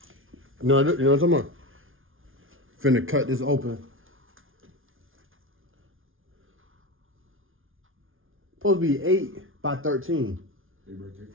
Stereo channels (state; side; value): late; left; 0.58 ms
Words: you know what I'm talking about? Finna cut this open. Supposed to be 8 by 13. 8 by